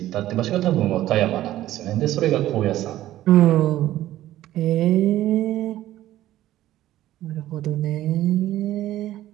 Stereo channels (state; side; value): quieter; left; 14.1 dB